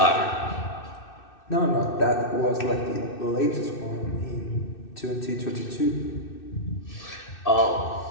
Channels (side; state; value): right; late; 2.6 ms